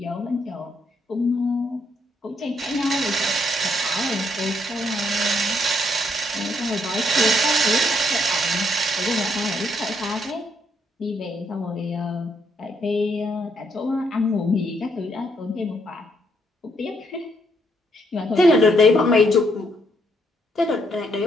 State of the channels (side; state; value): both; normal; correlation 0.73